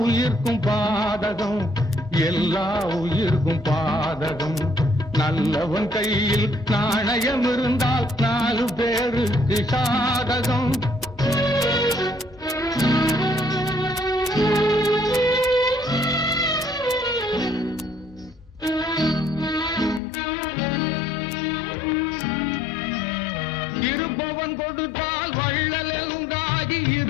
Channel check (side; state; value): right; drops out; at 20.0 s